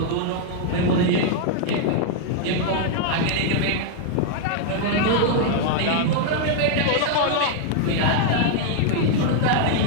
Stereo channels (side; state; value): both; different; correlation 0.00